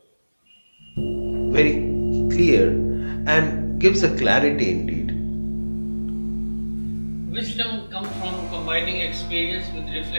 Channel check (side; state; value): both; inverted; correlation -1.00